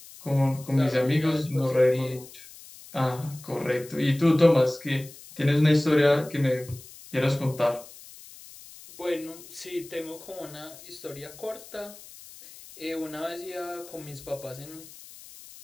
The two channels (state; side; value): noise; left; hiss, 19 dB below the sound